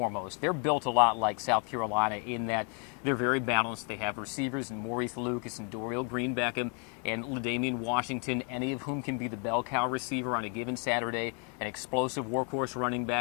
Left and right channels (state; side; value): quieter; right; 38.2 dB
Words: They're built a lot like South Carolina in that they're very balanced. They have receivers in Maurice Lucas and Dorial Green Beckham and LaDainian Washington, any of whom can be the bell cow receiver on a given Saturday, an explosive workhorse running